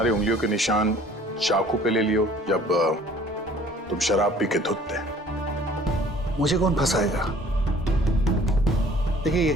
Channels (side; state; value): both; normal; correlation 0.53